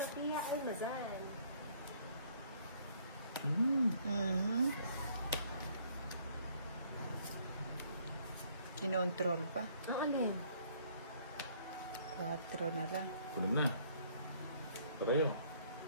Almazan. Kinontrol pa. Ang ano yun? 4 na lang. Kulam na. Tara yun.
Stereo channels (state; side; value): inverted; both; correlation -0.62